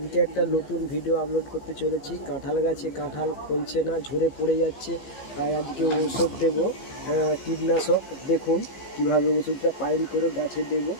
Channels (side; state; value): right; late; 15 ms